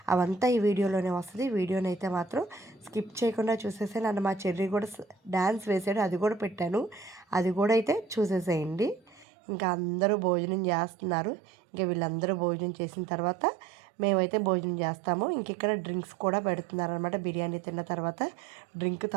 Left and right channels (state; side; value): drops out; left; at 9.2 s